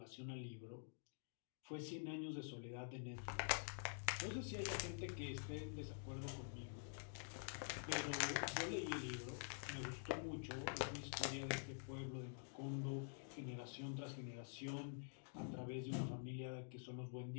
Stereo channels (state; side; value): silent; right; digital silence